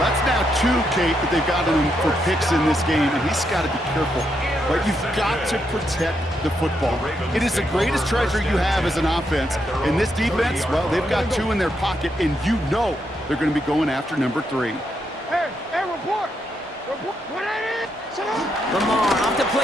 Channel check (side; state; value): both; normal; correlation 0.80